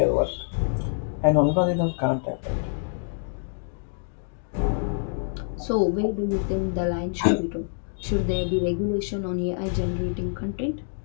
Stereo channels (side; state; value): right; silent; digital silence